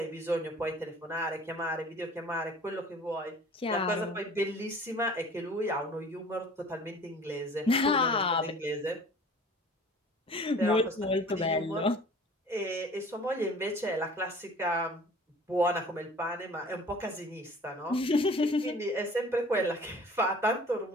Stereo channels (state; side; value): normal; both; correlation 0.47